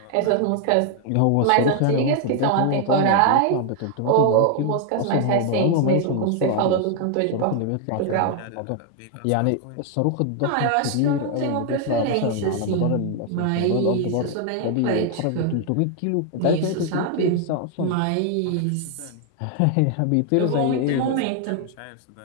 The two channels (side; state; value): both; different; correlation 0.00